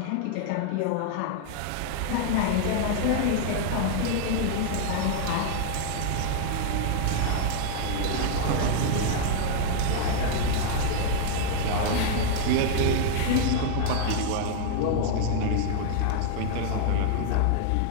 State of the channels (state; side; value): different; both; correlation 0.00